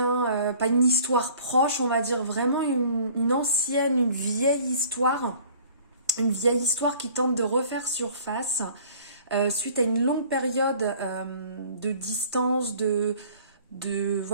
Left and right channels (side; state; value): both; inverted; correlation -0.51